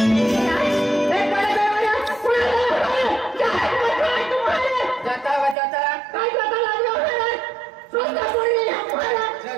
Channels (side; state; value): left; drops out; at 5.6 s